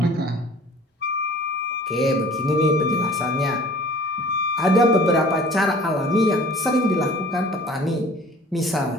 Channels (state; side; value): normal; both; correlation 0.48